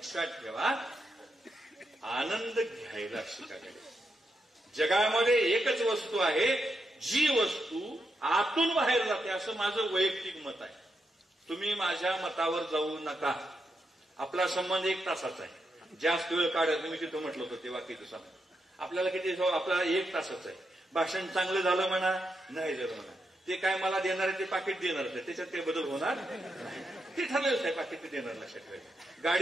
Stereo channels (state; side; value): normal; both; correlation 0.83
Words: ठेवा, आनंद घ्यायला शिकायला. जगामध्ये एकच वस्तू आहे जी वस्तू आतून बाहेर जाते, असं माझं वैयक्तिक मत आहे. तुम्ही माझ्या मतावर जाऊ नका. आपला संबंध 1 तासाचा आहे. जास्त वेळ काढायचं, मी तिथं म्हटलं होतं ते वाक्याचं संबंध आपल्याला किती, आपल्याला 1 तासाचा आहे. भाषण चांगलं झालं म्हणा, नाही झालं म्हणा, ते काय मला देणार आहे ते पाकिट देणार आहे, त्याच्यात ते बदल होणार ते ठरलेलंच आहे. पाकिट ते देणार. लक्षात ठेवायचं.